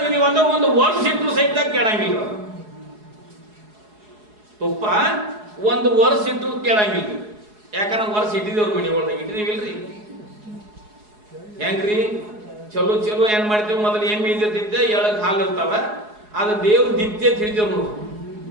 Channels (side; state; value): left; late; 4.8 ms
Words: ಅಂದ್ರೆ 1 ವರ್ಷ ಇಟ್ಟರು ಸಹಿತ ಕೆಡಂಗಿಲ್ಲ. ತುಪ್ಪ 1 ವರ್ಷ ಇಟ್ಟರು ಕೆಡಂಗಿಲ್ಲ. ಯಾಕಂದ್ರೆ ವರ್ಷ ಇಟ್ಟಿದೇವ್ರ ಮನೆ ಒಳಗೆ ಇಟ್ಟಿದೀವಿಲ್ರಿ. ಹೆಂಗ್ರಿ ಚಲೋ ಚಲೋ ಏನ್ ಮಾಡ್ತೀವಿ, ಮೊದಲು ಏನ್ ಬೀದಿರ್ತಿದ್ದೆ ಎಳಗ್ ಹಾಲು ಇರ್ತಾವ, ಅದು ದೇವ್ರ ದಿಪ್ತಿ ಅಂತ ಹಿಡಿತೇವ್ ನೋಡ್ರಿ.